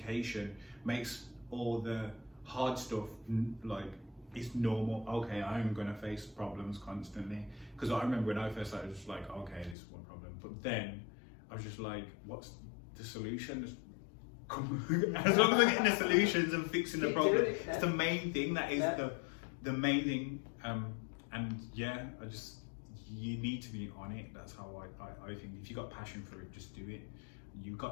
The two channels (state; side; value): drops out; right; at 9.8 s